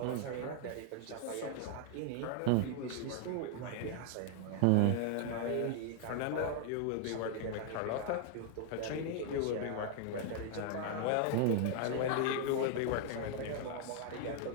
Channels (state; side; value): different; both; correlation 0.00